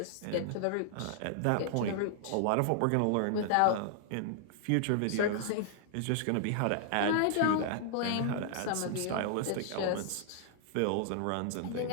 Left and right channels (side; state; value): both; different; correlation -0.01